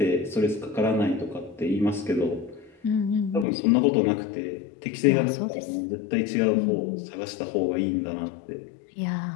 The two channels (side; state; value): right; drops out; at 3.5 s